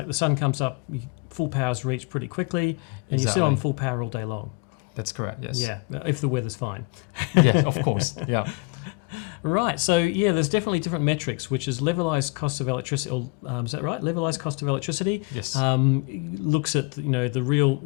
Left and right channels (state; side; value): quieter; right; 28.3 dB